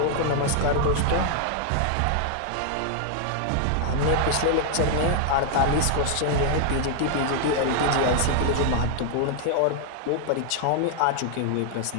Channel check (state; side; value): different; both; correlation 0.00